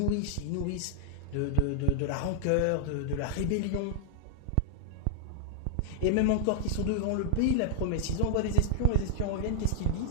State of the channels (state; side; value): different; both; correlation -0.01